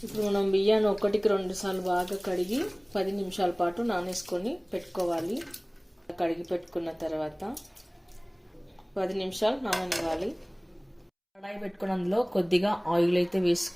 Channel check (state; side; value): identical; both; correlation 1.00